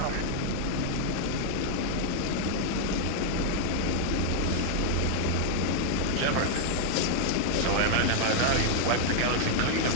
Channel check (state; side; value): different; both; correlation -0.01